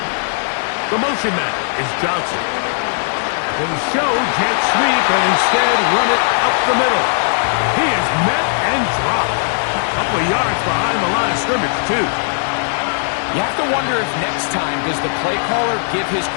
The motion man is Johnson. They show jet sweep and instead run it up the middle. He is met and dropped. A couple of yards behind the line of scrimmage, too. You have to wonder if next time does the play caller give his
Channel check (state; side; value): silent; right; digital silence